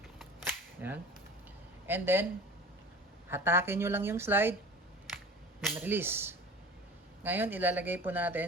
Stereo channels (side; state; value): both; normal; correlation 0.39